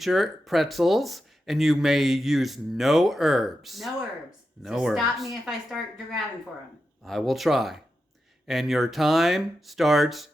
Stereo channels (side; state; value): both; normal; correlation 0.89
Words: pretzels and you may use no herbs. No herbs. No so herbs. Stop me if I start grabbing for them. I will try. And your time starts